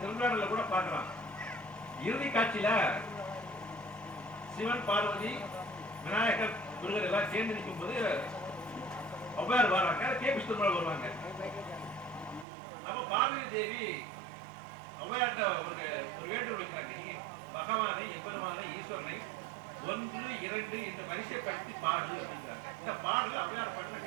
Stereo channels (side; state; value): left; drops out; at 12.5 s